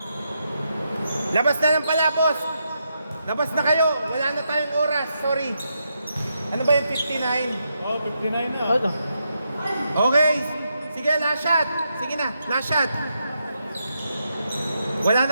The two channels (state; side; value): inverted; both; correlation -0.83